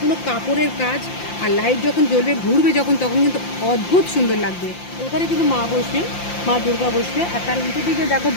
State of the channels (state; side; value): late; right; 5.8 ms